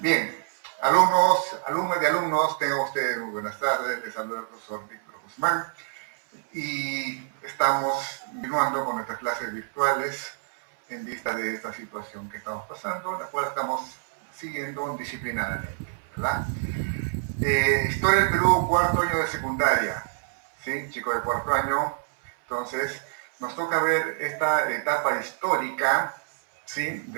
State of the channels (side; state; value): left; silent; 60 dB below the other